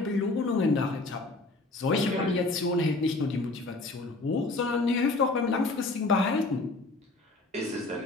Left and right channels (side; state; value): right; quieter; 3.1 dB